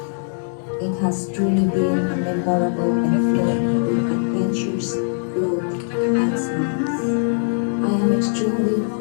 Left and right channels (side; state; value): right; silent; digital silence